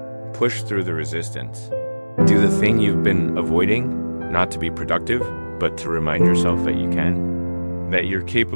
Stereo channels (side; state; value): both; inverted; correlation -1.00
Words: Push through the resistance. Do the thing you've been avoiding, not to be productive, but to remind yourself that you can. That you're